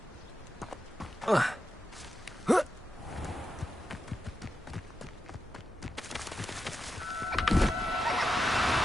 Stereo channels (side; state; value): both; normal; correlation 0.88